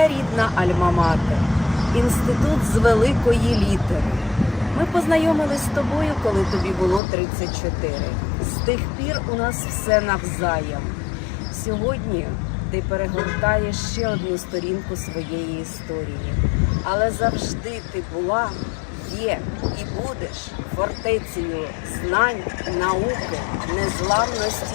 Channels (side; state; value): right; drops out; at 7.0 s